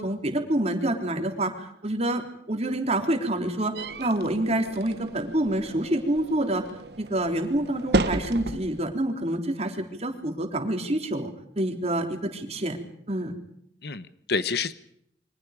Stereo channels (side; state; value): both; normal; correlation 0.51